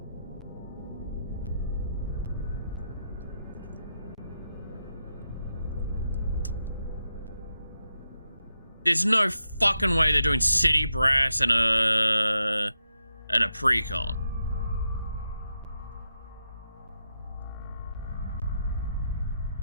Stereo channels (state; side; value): inverted; both; correlation -0.85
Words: There's no fucking way they're doing City Brass and a pre-con.